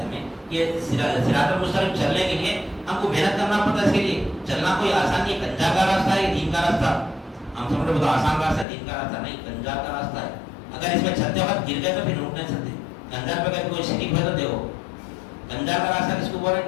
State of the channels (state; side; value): drops out; right; at 8.7 s